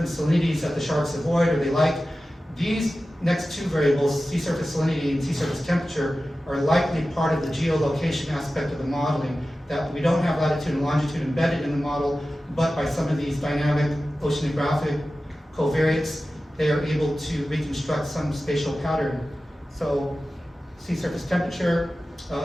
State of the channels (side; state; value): both; normal; correlation 0.95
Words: salinities that the sharks avoid or they like. These next two variables, sea surface salinity and sea surface temperature, are likely part of the geolocation aspect of the modeling, that we don't have latitude and longitude embedded in the model, but by some of these dynamic oceanographic covariates, they are able to reconstruct some spatial pattern. So sea surface temperature,